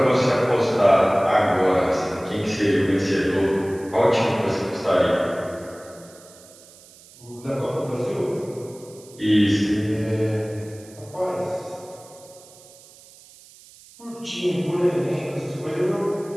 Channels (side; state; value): right; noise; hiss, 23 dB below the sound